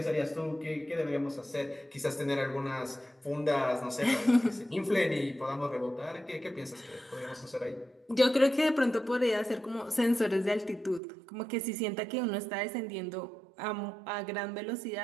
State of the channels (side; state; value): left; drops out; at 11.0 s